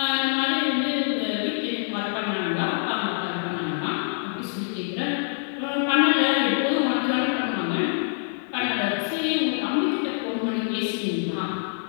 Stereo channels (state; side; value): silent; right; 56 dB below the other